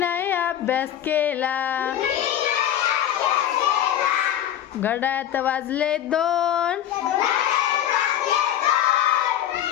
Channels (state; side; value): quieter; right; 11.1 dB